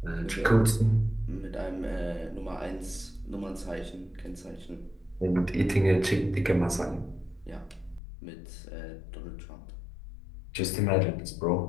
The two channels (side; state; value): right; drops out; at 8.0 s